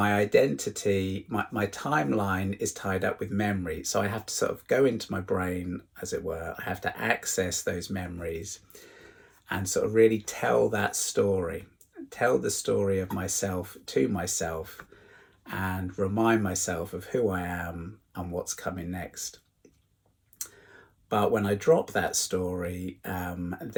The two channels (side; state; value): both; identical; correlation 1.00